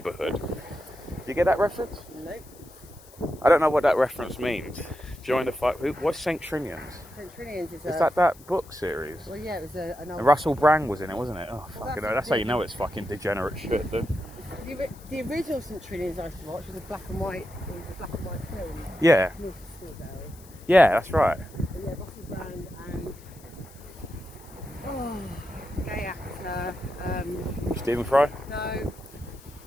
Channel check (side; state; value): left; noise; hiss, 23 dB below the sound